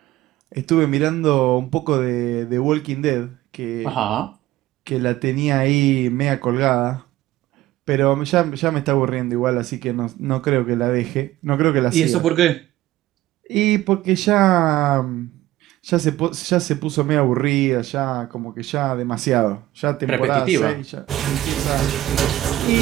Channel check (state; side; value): quieter; left; 15.5 dB